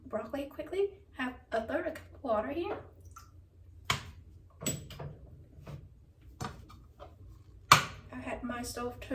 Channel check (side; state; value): both; identical; correlation 1.00